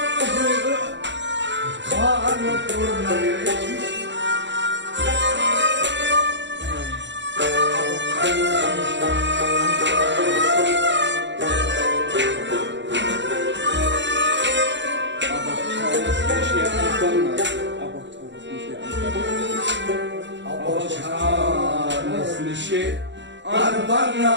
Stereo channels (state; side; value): late; left; 0.53 ms